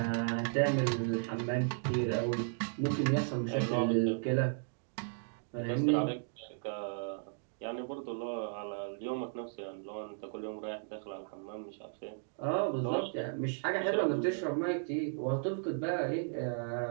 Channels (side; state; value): left; silent; digital silence